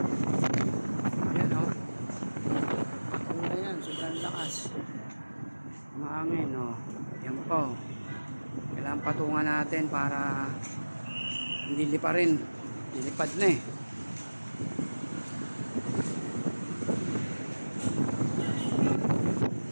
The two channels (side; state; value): both; inverted; correlation -1.00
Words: Ayan patong yan, sobrang lakas ang hangin yan po. Kailangan patungan natin para hindi lipa rin. Nilipad na eh.